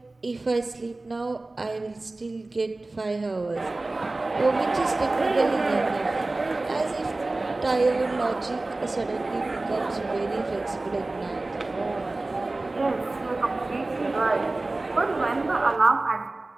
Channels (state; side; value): quieter; left; 3.1 dB